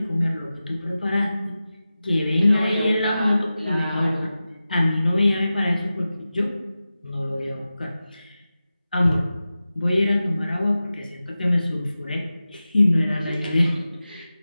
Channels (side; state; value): both; inverted; correlation -0.94